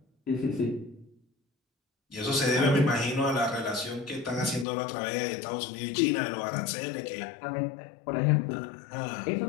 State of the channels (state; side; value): drops out; right; at 4.7 s